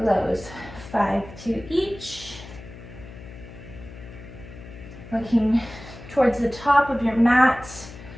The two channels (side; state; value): left; noise; hum, 16 dB below the sound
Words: 5 to each. Looking towards the top of your mat,